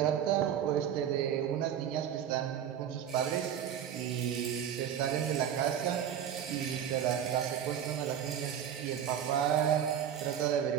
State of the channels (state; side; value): quieter; left; 9.4 dB